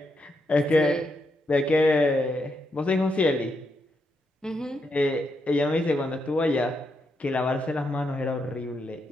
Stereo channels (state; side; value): normal; both; correlation 0.81